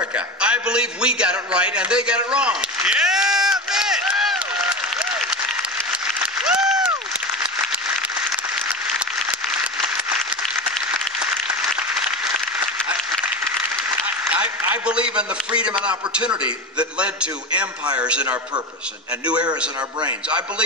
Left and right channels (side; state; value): both; normal; correlation 0.25